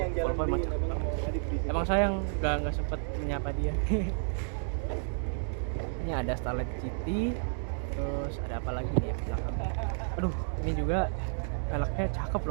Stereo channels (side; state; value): left; silent; digital silence